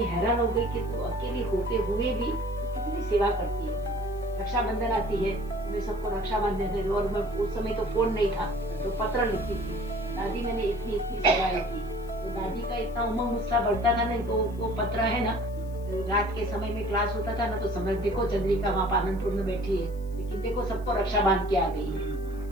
हैरान हो गई कि तो अकेली होते हुए भी कितनी सेवा करती है। रक्षाबंधन आती है, मैं सबको रक्षा बांधने थे, और मैं उस समय तो फोन नहीं था तो पत्र लिखती थी, दादी मैंने इतनी सेवाएं की। तो दादी का इतना उमंग उत्साह बढ़ता था ना, तो वो पत्र है ना, रात के समय में क्लास होता था ना, तो समझ देखो चंद्रिका वहाँ पालनपुर में बैठी है, लेकिन देखो सबको रक्षा बांध के आ गई है,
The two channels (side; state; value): left; noise; hiss, 27 dB below the sound